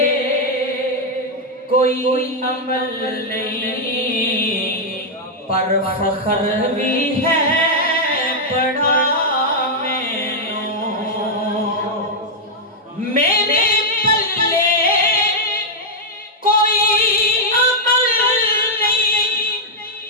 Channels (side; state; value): both; normal; correlation -0.02